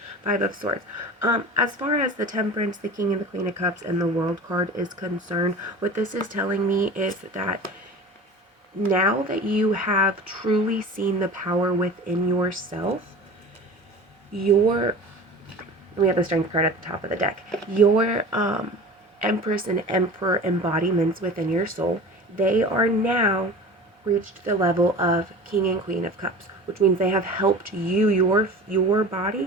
Five of Swords. As far as the Temperance, the King and the Queen of Cups, and the World card is concerned, what this is telling me is that now that you have truly seen the power within yourself, we have the Strength card at the top of the deck. Your Empress and Emperor embodiments within your soul, they are now reached the level of King and Queen of Cups, which means they have helped you, your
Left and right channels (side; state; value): both; normal; correlation 0.37